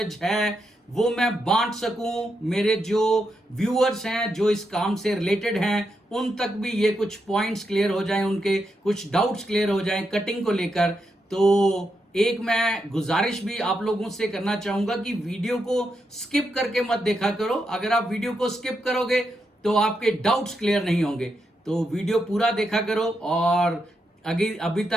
है वो मैं बांट सकूं, मेरे जो व्यूअर्स हैं जो इस काम से रिलेटेड हैं उन तक भी ये कुछ पॉइंट्स क्लियर हो जाएं, उनके कुछ डाउट्स क्लियर हो जाएं कटिंग को लेकर। तो एक मैं गुजारिश भी आप लोगों से करना चाहूंगा कि वीडियो को स्किप करके मत देखा करो। अगर आप वीडियो को स्किप करोगे तो आपके डाउट्स क्लियर नहीं होंगे। तो वीडियो पूरा देखा करो। और अभी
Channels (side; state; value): both; normal; correlation 0.83